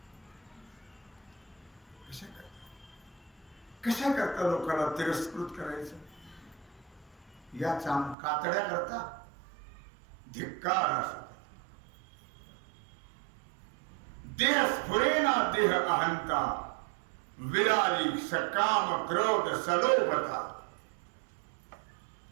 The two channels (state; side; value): drops out; left; at 8.2 s